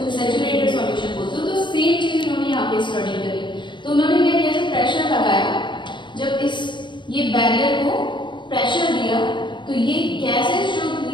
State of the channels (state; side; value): late; right; 0.23 ms